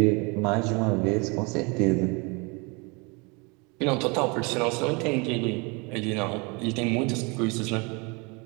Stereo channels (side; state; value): left; quieter; 29.5 dB